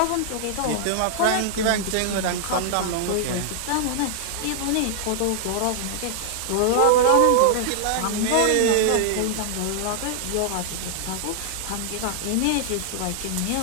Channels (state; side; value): different; both; correlation -0.01